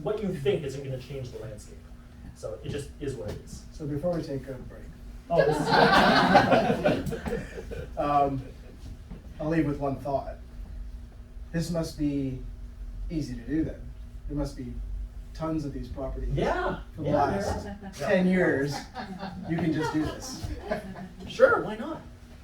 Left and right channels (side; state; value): both; identical; correlation 1.00